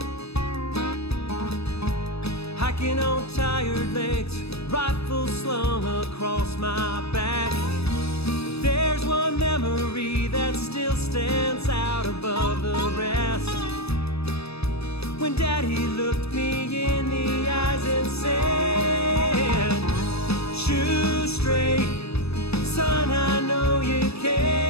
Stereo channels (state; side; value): late; right; 0.78 ms